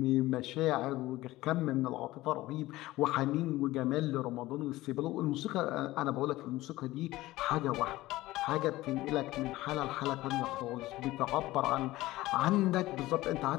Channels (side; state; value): right; quieter; 17.6 dB